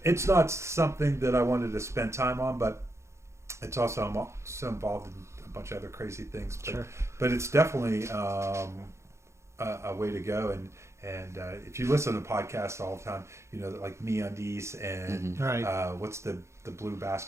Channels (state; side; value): late; left; 0.14 ms